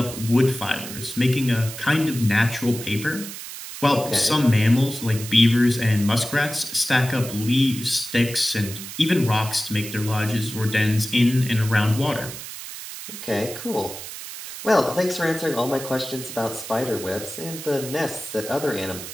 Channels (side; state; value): right; noise; hiss, 10 dB below the sound